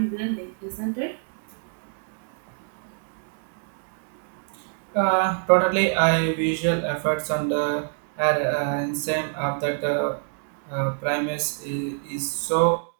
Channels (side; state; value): left; silent; 61 dB below the other